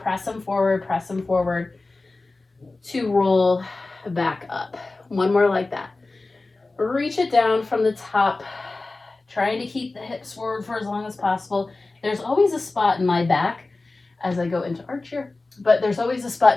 press them forward, press them forward to roll back up. One more like that. Reach it down from the top, trying to keep the hips forward for as long as possible. There's always a spot in my back as I go into arch here, but there's always a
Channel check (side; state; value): right; quieter; 3.3 dB